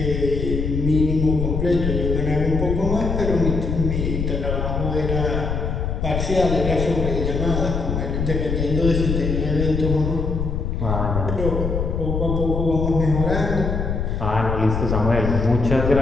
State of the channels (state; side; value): noise; left; rumble, 2 dB below the sound